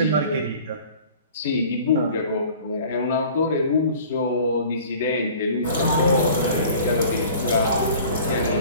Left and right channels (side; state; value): both; inverted; correlation -0.46